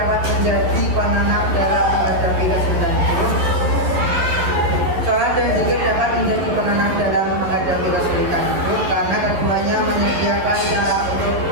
menjadi penenang dalam menghadapi kesulitan hidup. Sholat dan zikir dapat menjadi penenang dalam menghadapi kesulitan hidup karena keduanya menyediakan cara untuk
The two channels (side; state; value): left; late; 11 ms